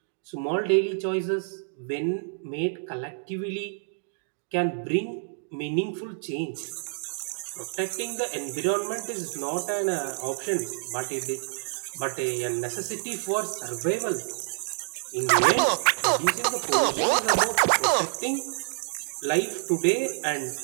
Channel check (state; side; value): silent; left; digital silence